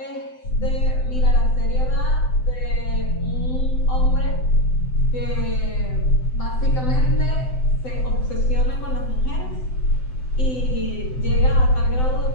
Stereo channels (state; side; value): late; right; 7.8 ms